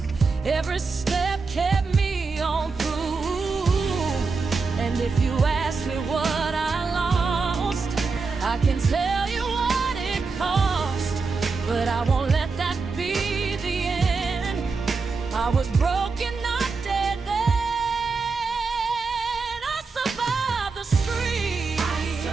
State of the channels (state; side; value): quieter; left; 4.4 dB